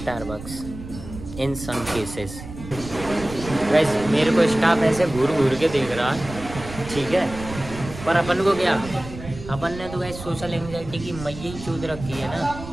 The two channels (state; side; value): noise; right; rumble, 12 dB below the sound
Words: in some cases. वैसे मेरे को स्टाफ ऐसे घूर घूर के देख रहा, ठीक है, पर अपन को क्या, अपन ने तो वैसे सोशल एंजाइटी की मैया ही चूद रखी है ना।